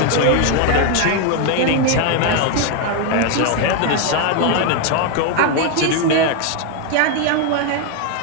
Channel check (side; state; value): both; different; correlation 0.01